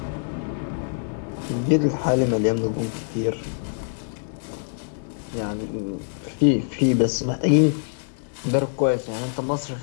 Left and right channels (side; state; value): right; silent; digital silence